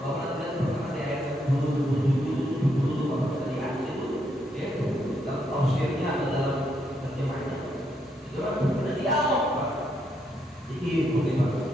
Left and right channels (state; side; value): normal; both; correlation 0.77